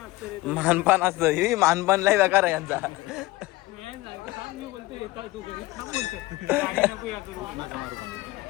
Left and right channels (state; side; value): quieter; right; 19.4 dB